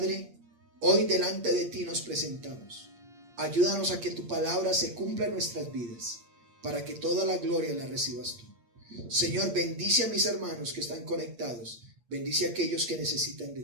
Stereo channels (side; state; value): left; late; 8.7 ms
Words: hoy delante de ti nos presentamos. Ayúdanos a que tu palabra se cumpla en nuestras vidas, para que toda la gloria la recibas tú. Señor, bendice a mis hermanos que están conectados, bendice a aquellos que necesitan de